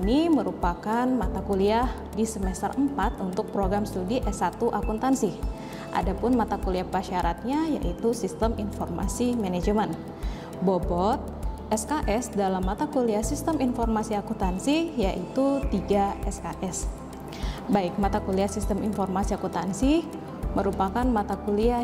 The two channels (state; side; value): identical; both; correlation 1.00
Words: merupakan mata kuliah di semester 4 untuk program studi S1 Akuntansi. Adapun mata kuliah prasyaratnya yaitu Sistem Informasi Manajemen. Bobot SKS dalam mata kuliah Sistem Informasi Akuntansi yaitu 3 SKS. Baik, mata kuliah Sistem Informasi Akuntansi merupakan mata